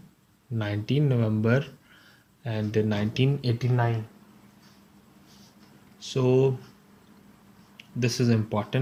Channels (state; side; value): identical; both; correlation 1.00